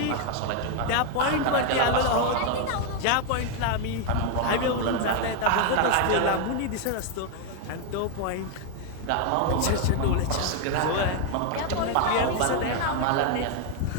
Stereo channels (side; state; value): both; different; correlation 0.00